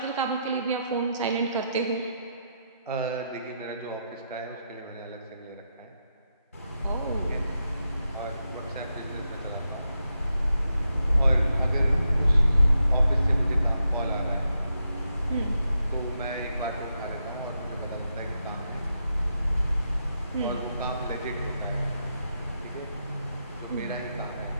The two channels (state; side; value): inverted; both; correlation -0.84